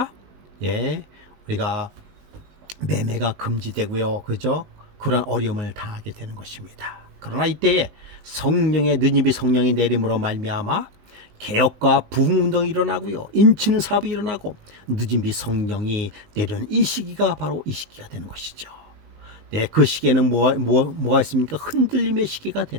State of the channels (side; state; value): left; late; 19 ms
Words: 우리가 매매가 금지되고요. 그죠? 그런 어려움을 당하게 되는 것입니다. 그러나 이때에 느니비 성령이 내림으로 말미암아 개혁과 부흥운동이 일어나고요. 인치는 사업이 일어나고 느니비 성령이 내려는 이 시기가 바로 이 시기가 되는 것이죠. 그 시기에는 뭐가 있습니까? 흔들림의 시기가